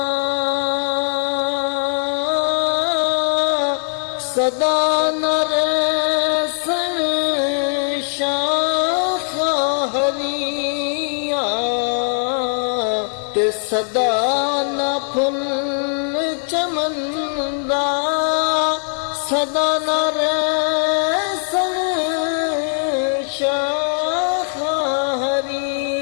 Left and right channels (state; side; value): silent; right; digital silence